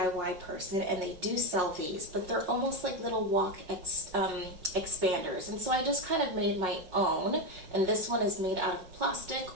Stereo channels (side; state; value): left; late; 5.5 ms